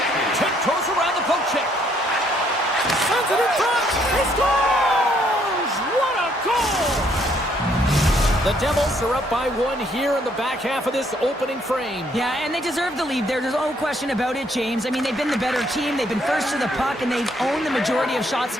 Tiptoes around the poke check. Sends it in front. He scores! What a goal! The Devils are up by one here in the back half of this opening frame. Yeah, and they deserve the lead. There's no question about it, James. I mean, they've been the better team. They've been first to the puck, and they've owned the majority of shots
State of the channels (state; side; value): normal; both; correlation 0.68